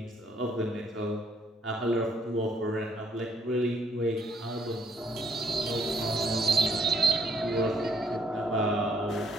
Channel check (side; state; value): both; normal; correlation 0.69